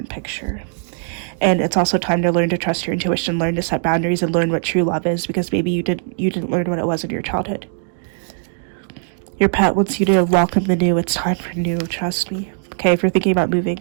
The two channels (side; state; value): left; silent; digital silence